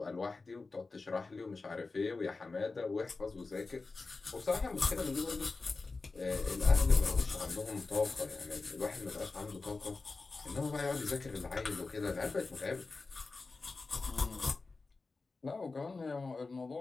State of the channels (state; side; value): quieter; right; 3.9 dB